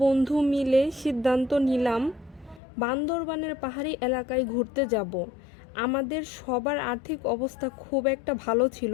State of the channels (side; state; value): right; drops out; at 2.6 s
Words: বন্ধু মিলে সিদ্ধান্ত নিলাম বান্দরবানের পাহাড়ি এলাকায় ঘুরতে যাব। আমাদের সবার আর্থিক অবস্থা খুব একটা ভালো ছিল